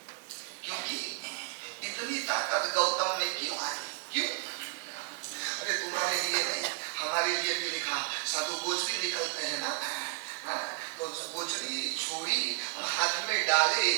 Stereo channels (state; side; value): quieter; left; 33.2 dB